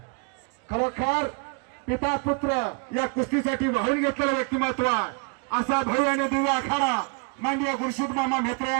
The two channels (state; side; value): quieter; left; 34.7 dB